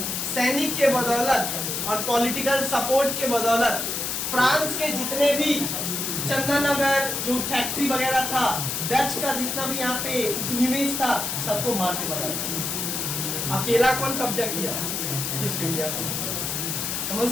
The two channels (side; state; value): left; noise; hiss, 2 dB below the sound